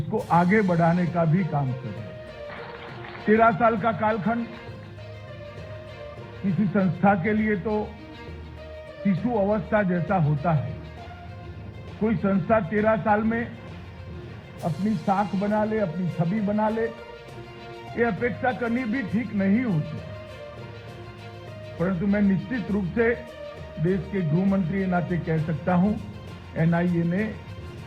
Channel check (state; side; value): identical; both; correlation 1.00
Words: आगे बढ़ाने का भी काम कर रहा है। 13 साल का कालखंड किसी संस्था के लिए तो शिशु अवस्था जैसा होता है। कोई संस्था 13 साल में अपनी साख बना ले, अपनी छवि बना ले, ये अपेक्षा करनी भी ठीक नहीं होती। परंतु मैं निश्चित रूप से देश के गृह मंत्री के नाते कह सकता हूं, एनआईए ने